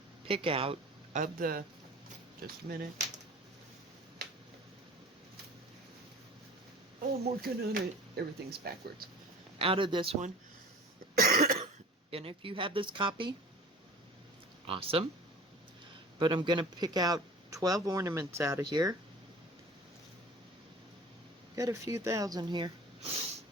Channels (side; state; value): both; normal; correlation 0.43